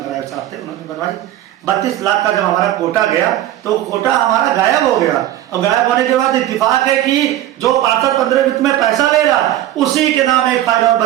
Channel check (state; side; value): quieter; left; 13.3 dB